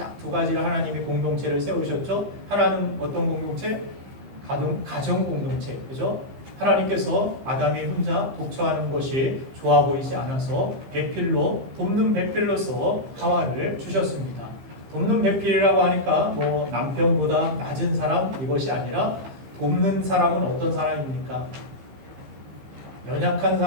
두 가지를 하나님이 공동체를 세우셨죠. 하나는 어떤 공동체? 가정 공동체, 그죠? 하나님께서 아담이 혼자 독처하는 것이 좋아 보이지 않아서 돕는 배필로서 하와를 주셨습니다. 돕는 배필이라고 하니까 뭐 남편보다 낮은 사람, 이것이 아니라 돕는 사람은 어떤 사람입니까? 연약한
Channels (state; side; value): late; left; 15 ms